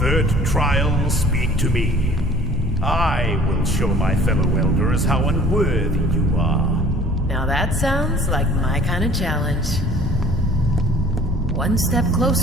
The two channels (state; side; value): normal; both; correlation 0.50